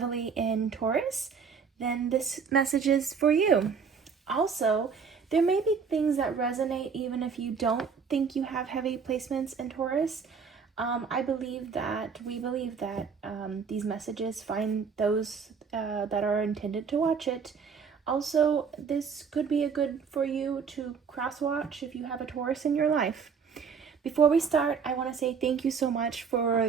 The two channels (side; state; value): left; quieter; 6.0 dB